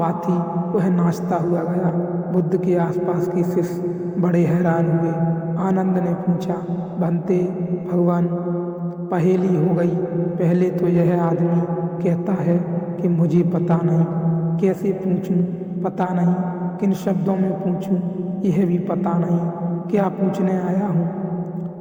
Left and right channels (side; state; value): both; identical; correlation 1.00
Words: थी, वह नाचता हुआ गया। बुद्ध के आसपास के शिष्य बड़े हैरान हुए। आनंद ने पूछा, बनते भगवान, पहेली हो गई। पहले तो यह आदमी कहता है कि मुझे पता नहीं, कैसे पूछूं, पता नहीं, किन शब्दों में पूछूं, यह भी पता नहीं, क्या पूछने आया